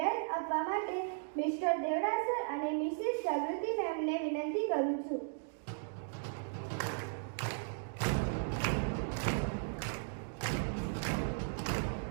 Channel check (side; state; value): left; silent; digital silence